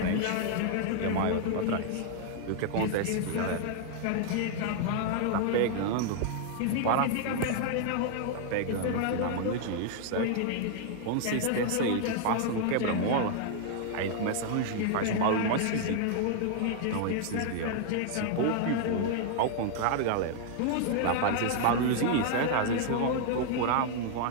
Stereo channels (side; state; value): both; different; correlation 0.00